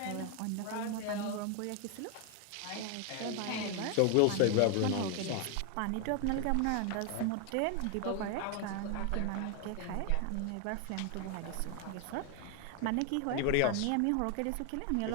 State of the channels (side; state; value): both; different; correlation 0.01